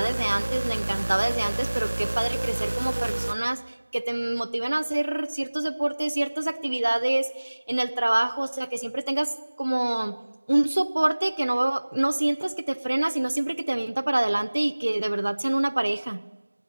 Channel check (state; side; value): inverted; both; correlation -1.00